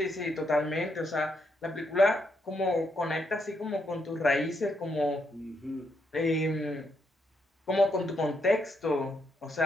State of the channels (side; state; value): both; normal; correlation 0.78